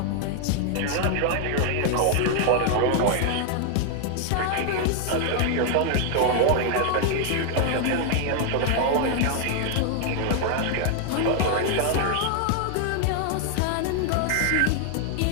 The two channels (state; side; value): different; both; correlation 0.00